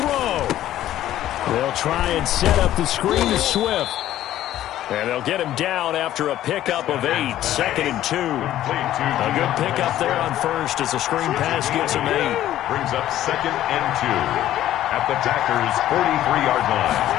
They'll try and set up the screen to Swift. And they'll get him down after a pickup of 8, 2nd and 2. A good pickup there on first as the screen pass gets him 8. Brings up 2nd and 2 at the Packers' 43-yard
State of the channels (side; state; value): right; quieter; 13.0 dB